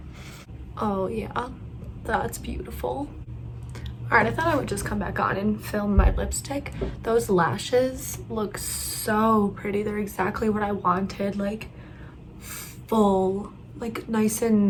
Oh yeah, that's beautiful. All right, I thought I would just come back on and film my lipstick. Those lashes look so pretty. They're exactly what I wanted, like full, like nice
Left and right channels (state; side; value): identical; both; correlation 1.00